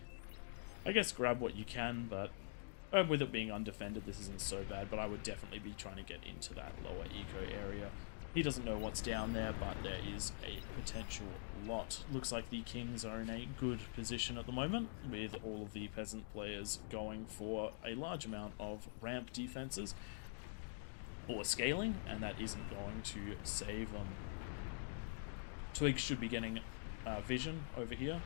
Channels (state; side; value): silent; right; digital silence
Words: I guess grab what you can, but with it being undefended, this isn't so bad, but I would definitely be trying to get into that lower eco area. He doesn't know what's down there, but there is a potential lot. Looks like the Kings are in a good position at the moment, with all of the Peasant players going for a large amount of ramp defenses or scaling, and that isn't going to save them. Twig should be getting vision over here